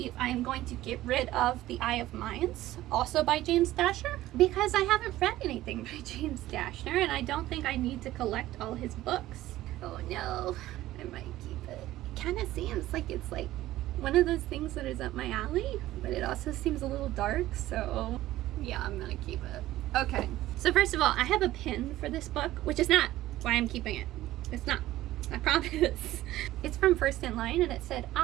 I am going to get rid of The Eye of Mines, also by James Dasher, because I haven't read anything by James Dasher, and I don't think I need to collect all his books. Oh no, I might keep it. It kind of seems like it's like one of those things that is up my alley, but it also seems a little dark, so yeah, I'm gonna keep it. Okay, so first of all, I have a pin for this book, which is not why I'm keeping it. It's not, I promise. It's from First in Line, and it said,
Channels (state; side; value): quieter; left; 15.4 dB